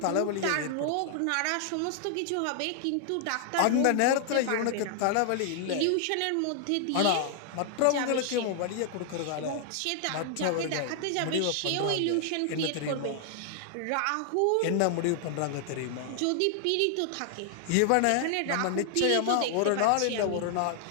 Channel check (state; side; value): different; both; correlation 0.00